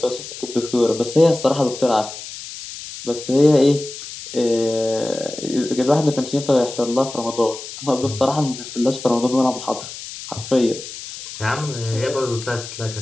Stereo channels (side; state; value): left; noise; hiss, 11 dB below the sound